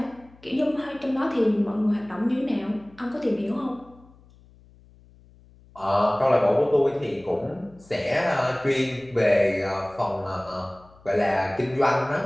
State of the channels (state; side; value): noise; left; hum, 26 dB below the sound